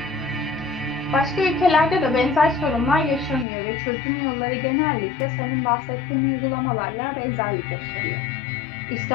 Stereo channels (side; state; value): right; drops out; at 3.5 s